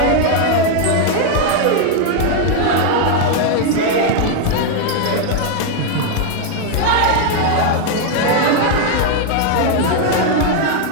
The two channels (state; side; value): different; both; correlation 0.00